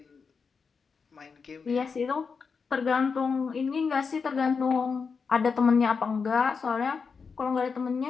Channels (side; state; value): right; quieter; 5.4 dB